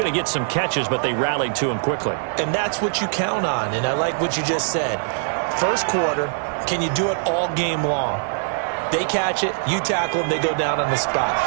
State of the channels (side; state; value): left; silent; digital silence